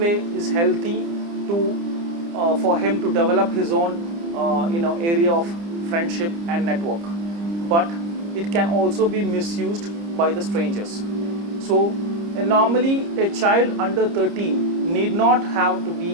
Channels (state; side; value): late; left; 30 ms